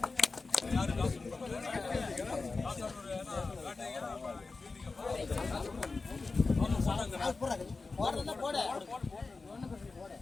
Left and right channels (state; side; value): quieter; right; 4.0 dB